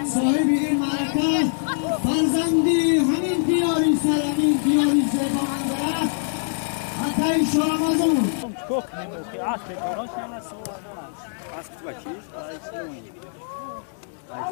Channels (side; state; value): right; silent; digital silence